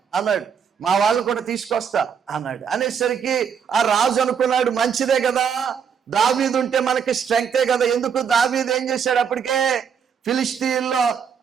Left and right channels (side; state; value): left; quieter; 7.2 dB